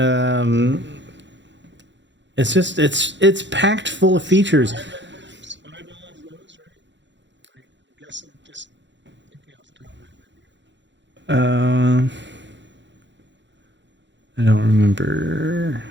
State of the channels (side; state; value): left; late; 0.53 ms